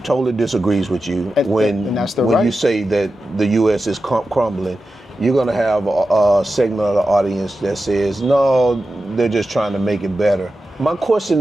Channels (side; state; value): both; normal; correlation 0.92